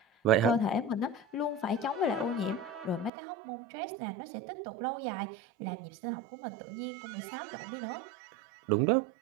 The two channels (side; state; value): left; drops out; at 3.1 s